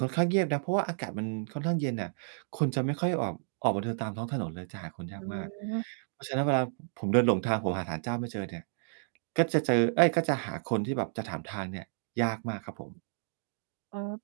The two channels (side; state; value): left; silent; digital silence